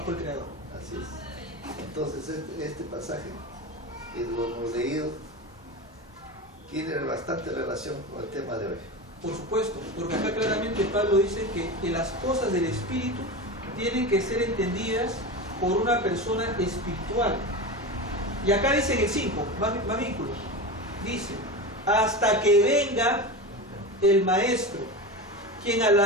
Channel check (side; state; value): both; normal; correlation 0.24